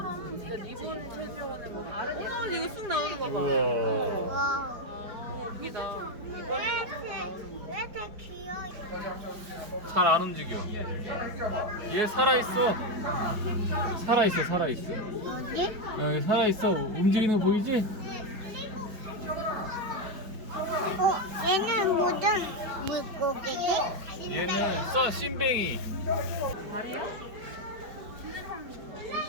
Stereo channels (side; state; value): left; late; 4.8 ms